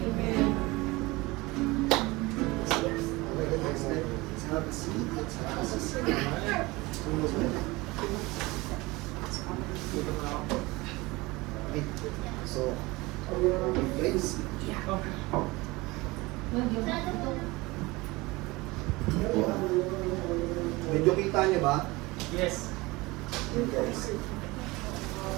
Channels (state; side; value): quieter; left; 22.3 dB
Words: Let's have a seat. Let's have a seat. Okay. So, place. Medyo kita niyo ba? Yes. Guys.